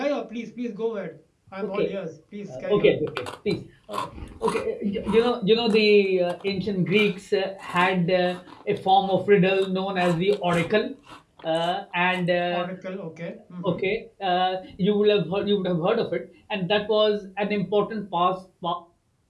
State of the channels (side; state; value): both; identical; correlation 1.00